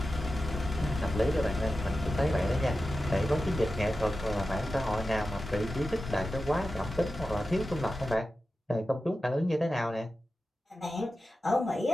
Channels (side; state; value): both; normal; correlation 0.93